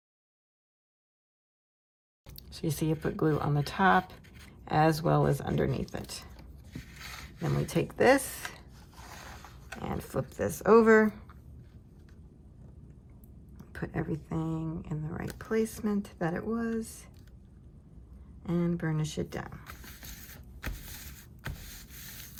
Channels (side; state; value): both; identical; correlation 1.00